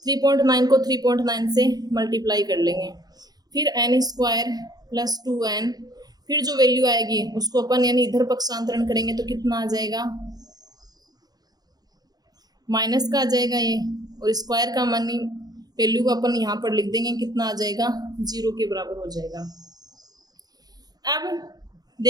3.9 को 3.9 से मल्टीप्लाई कर लेंगे, फिर n स्क्वायर प्लस 2n, फिर जो वैल्यू आएगी उसको अपन यानी इधर पक्षांतरण करेंगे तो कितना आ जाएगा, माइनस का आ जाएगा ये, और स्क्वायर का मानी वैल्यू को अपन यहाँ पर लिख देंगे, कितना आ जाएगा, 0 के बराबर हो जाएगा। अब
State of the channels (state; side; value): late; left; 0.19 ms